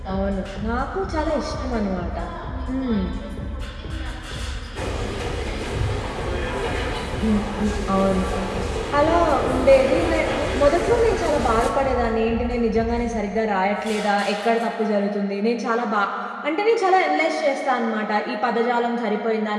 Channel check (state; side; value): identical; both; correlation 1.00